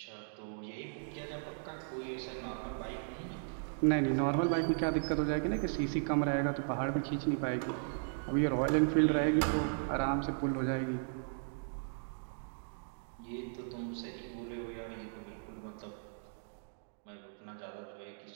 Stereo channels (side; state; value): left; silent; digital silence